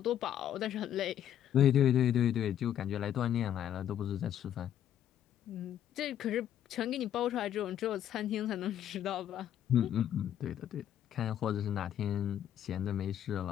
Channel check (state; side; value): quieter; right; 10.6 dB